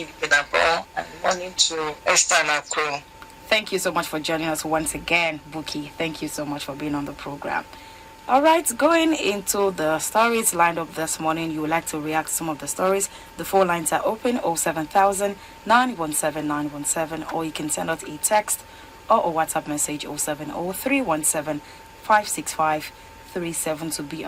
Vidabo, and morning to Esther and our crew. Thank you so much for joining us once again, Buki. Thank you so much for being on the program. All right, going into the stories lined up this morning, you would like to react to some of the stories. The phone lines are open 07000 917 917, or you can send us a text or a WhatsApp message 070 565 37 to be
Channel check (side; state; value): both; identical; correlation 1.00